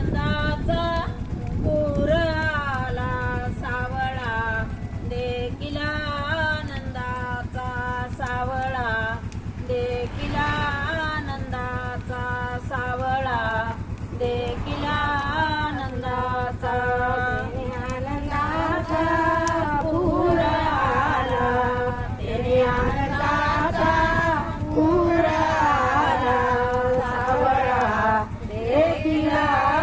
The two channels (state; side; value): identical; both; correlation 1.00